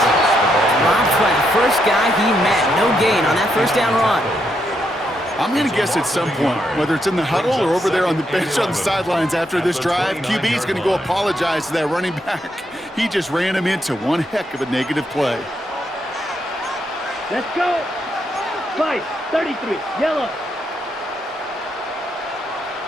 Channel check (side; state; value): both; normal; correlation 0.79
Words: Dropped by the first guy he met. No gain on that first down run. I'm going to guess at some point, whether it's in the huddle or over there on the bench on the sidelines after this drive, QB is going to go apologize to that running back. He just ran him into one heck of a negative play. Let's go. 5, 33. Yellow.